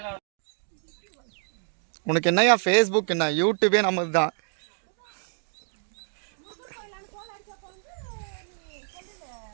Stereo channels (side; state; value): left; silent; 59 dB below the other